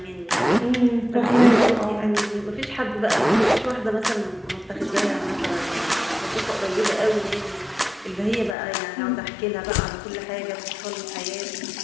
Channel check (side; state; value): right; drops out; at 8.6 s